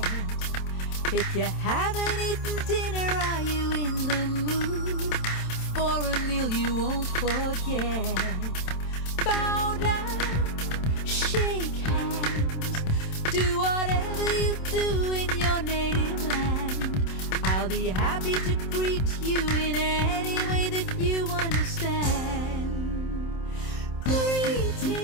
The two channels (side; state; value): right; late; 27 ms